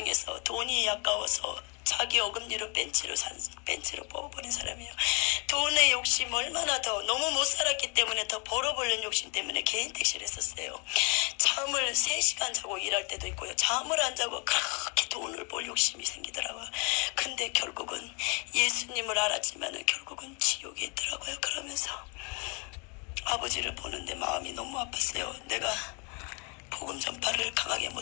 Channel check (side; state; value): right; quieter; 33.2 dB